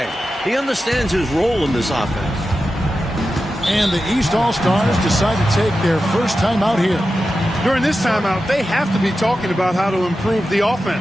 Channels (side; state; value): both; normal; correlation 0.92